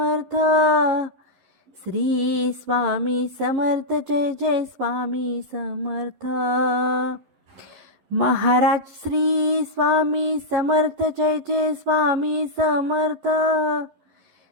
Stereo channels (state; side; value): late; left; 11 ms